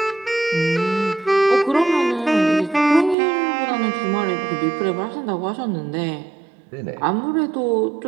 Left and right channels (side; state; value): left; drops out; at 3.2 s